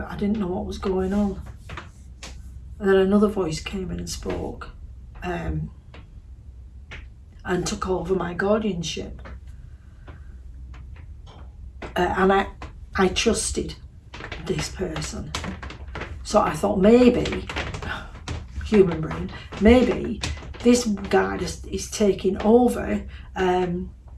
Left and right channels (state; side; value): identical; both; correlation 1.00